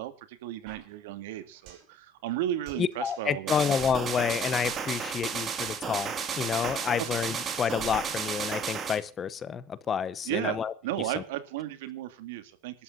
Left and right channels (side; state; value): both; normal; correlation 0.54